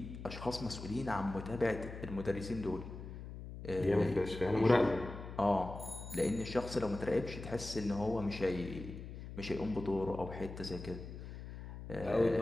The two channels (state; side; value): noise; left; hum, 10 dB below the sound